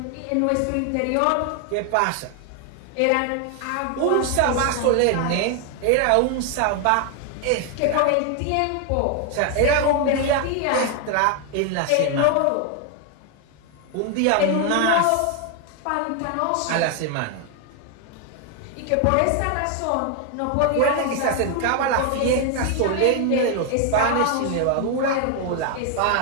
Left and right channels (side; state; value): both; different; correlation 0.01